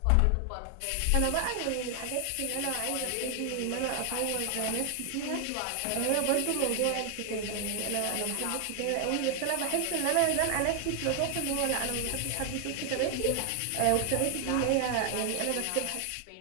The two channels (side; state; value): both; different; correlation 0.00